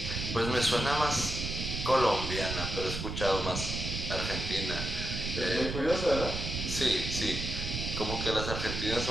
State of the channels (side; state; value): right; noise; rumble, 4 dB below the sound